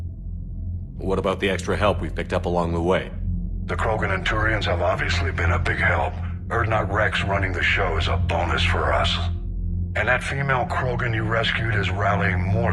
What about the extra help we've picked up along the way? The Krogan and Turians have obviously been a big help. Urdnot Rex running the show is a bonus for us. And that female Krogan you rescued is rallying more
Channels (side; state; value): both; identical; correlation 1.00